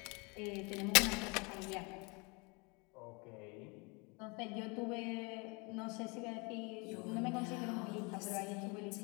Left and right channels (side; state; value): right; quieter; 29.8 dB